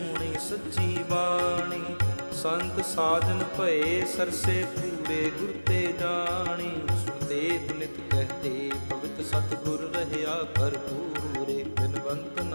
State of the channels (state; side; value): inverted; both; correlation -1.00